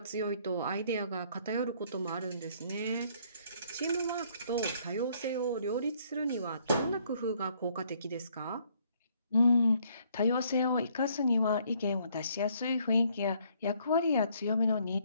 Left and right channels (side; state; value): both; inverted; correlation -0.66